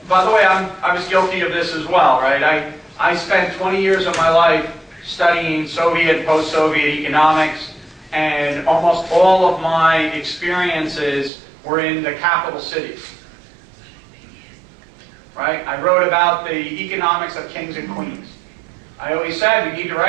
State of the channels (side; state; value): left; drops out; at 11.3 s